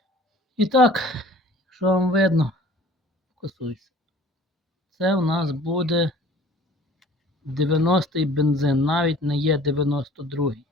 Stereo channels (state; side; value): normal; both; correlation 0.49